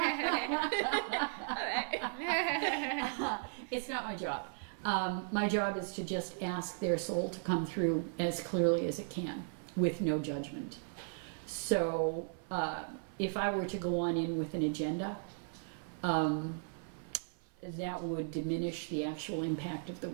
It's not my job. My job is to just ask their soul to come through as clearly as it can, with no judgment. So if I were to go on in with an agenda, that would diminish the actual impact of the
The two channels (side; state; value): left; silent; 54 dB below the other